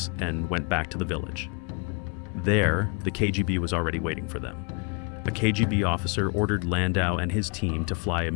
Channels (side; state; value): right; quieter; 34.9 dB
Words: and went back to the village. There, the KGB was already waiting for them. A KGB officer ordered Landau and his team to fly